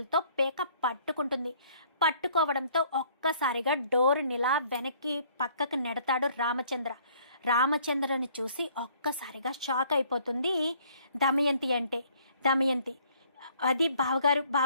పేక పట్టుకుంటుంది. పట్టుకోవడంతో ఒక్కసారిగా డోరునిలా వెనక్కి పక్కకు నెడతాడు రామచంద్రని చూసి ఒక్కసారిగా షాక్ అయిపోతుంది దమయంతి. అది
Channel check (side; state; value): both; inverted; correlation -0.60